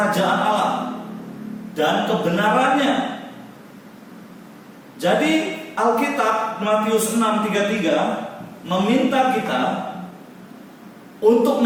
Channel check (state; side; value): identical; both; correlation 1.00